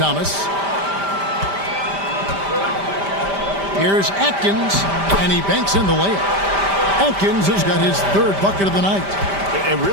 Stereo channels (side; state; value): left; late; 5.1 ms